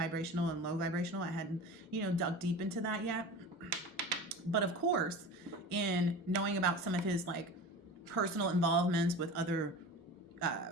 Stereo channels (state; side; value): normal; both; correlation 0.33